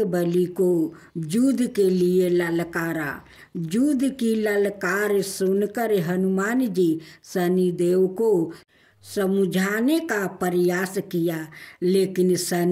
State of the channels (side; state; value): both; identical; correlation 1.00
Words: बली को युद्ध के लिए ललकारा। युद्ध की ललकार सुनकर हनुमान जी शनि देव को समझाने का प्रयास किया, लेकिन